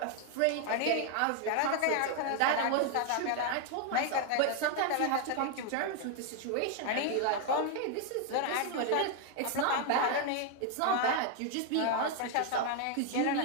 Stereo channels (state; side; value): different; both; correlation 0.01